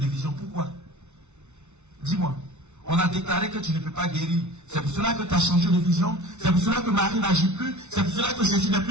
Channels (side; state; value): left; late; 0.82 ms